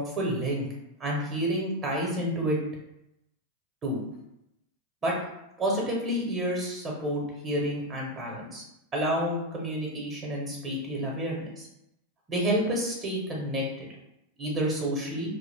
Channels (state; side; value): normal; both; correlation 0.10